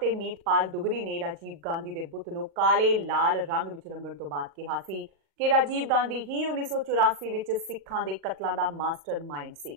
मीतपाल दुगरी ने राजीव गांधी के बुत नूं काले लाल रंग विच रंगण तो बाद कहा सी कि राजीव गांधी ही 1984 विच सिखां दे कतलां दा मास्टर माइंड सी।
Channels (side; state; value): left; late; 40 ms